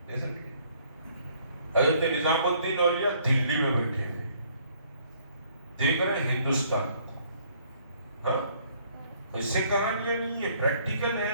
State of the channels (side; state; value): both; inverted; correlation -0.63